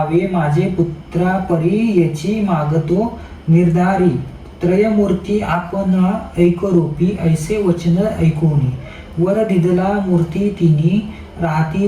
माझे पुत्रा परी याची मागतो निर्धारी. त्रयमूर्ती आपणा ऐकरूपी ऐसे वचन ऐकूनी. वर दिदला मूर्ती तिनी राहती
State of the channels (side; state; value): both; identical; correlation 1.00